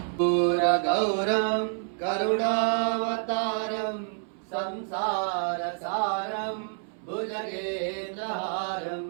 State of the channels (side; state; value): left; silent; 59 dB below the other